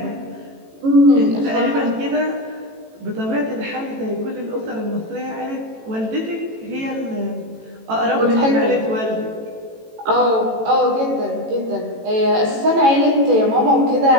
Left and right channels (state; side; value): late; left; 18 ms